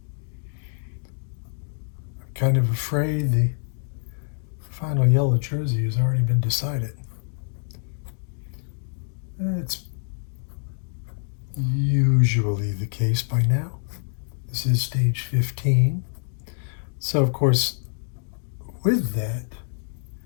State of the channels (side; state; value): right; silent; 61 dB below the other